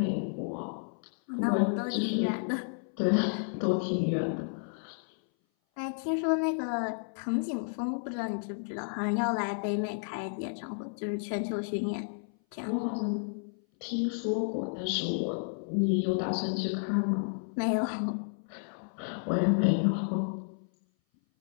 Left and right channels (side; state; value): right; silent; 57 dB below the other